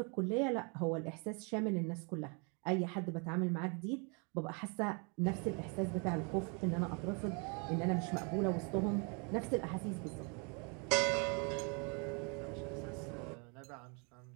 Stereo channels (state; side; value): quieter; left; 34.8 dB